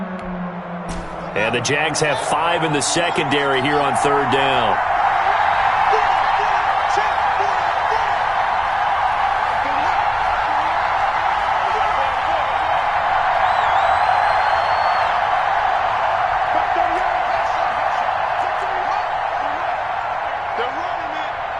And the Jags have 5 in the secondary here on 3rd down.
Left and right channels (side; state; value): both; identical; correlation 1.00